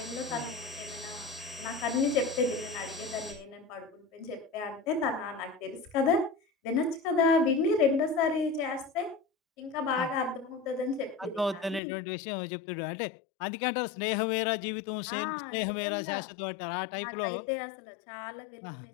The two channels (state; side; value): drops out; right; at 11.8 s